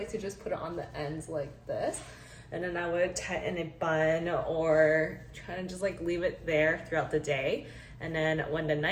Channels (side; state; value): both; identical; correlation 1.00